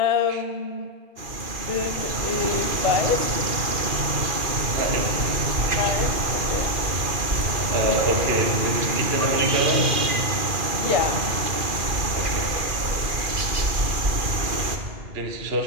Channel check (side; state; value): left; late; 2.4 ms